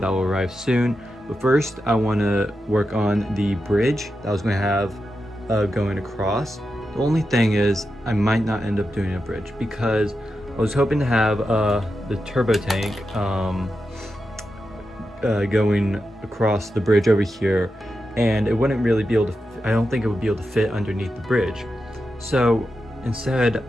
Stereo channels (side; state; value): both; normal; correlation 0.89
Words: will arrive soon. But first, I want to work on the bridge that I was going to have going across. The only thing is, I might not end up doing a bridge because I was hoping to have the turbo tank going across the bridge over here, and it wouldn't really be able to, I don't think it would be able to fit underneath the bridge. So instead,